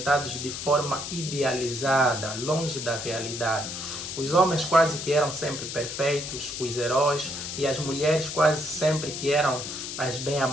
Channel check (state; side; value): noise; left; hiss, 6 dB below the sound